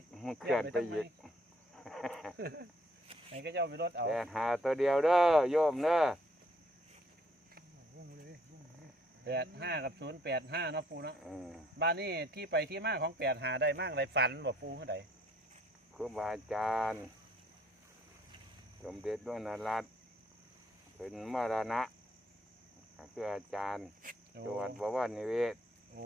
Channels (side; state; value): both; normal; correlation 0.64